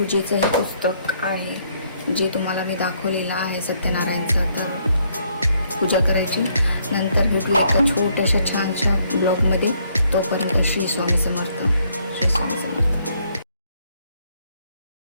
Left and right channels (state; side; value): inverted; both; correlation -0.70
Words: हे पुस्तक आहे जे तुम्हाला मी दाखवलेलं आहे सत्यनारायणचं. तर पूजा करायची. नंतर भेटूया एका छोट्याशा छानशा ब्लॉगमध्ये. तोपर्यंत श्री स्वामी समर्थ.